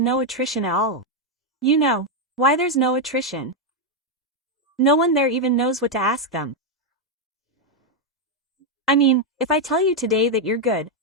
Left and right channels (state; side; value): normal; both; correlation 0.01